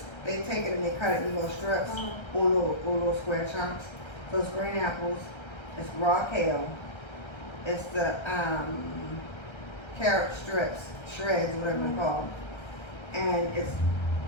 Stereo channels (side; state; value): right; late; 1.3 ms